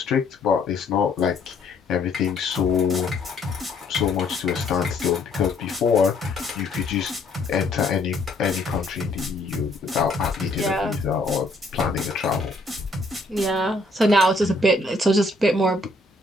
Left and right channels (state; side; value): quieter; right; 3.0 dB